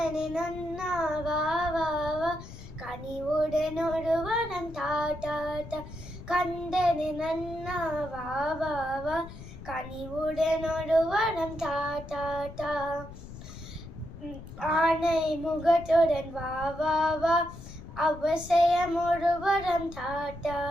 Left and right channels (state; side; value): noise; left; rumble, 14 dB below the sound